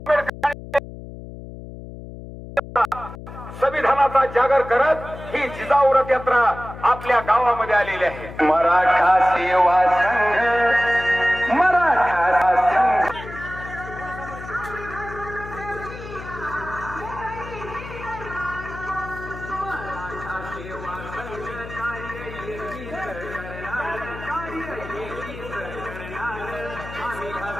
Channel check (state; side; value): noise; left; hum, 12 dB below the sound